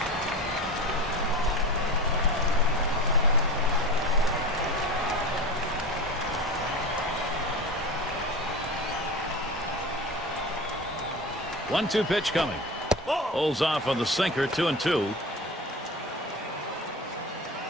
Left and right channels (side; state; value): both; normal; correlation 0.30